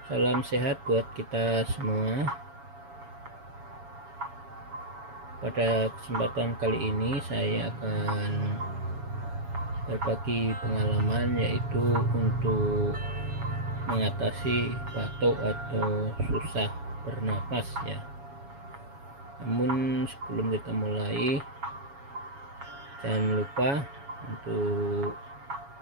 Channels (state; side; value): late; left; 7.2 ms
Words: Salam sehat buat kita semua. Pada kesempatan kali ini saya akan berbagi pengalaman, yaitu untuk mengatasi batuk atau susah bernapas ya. Namun sebelum kita mulai, jangan lupa untuk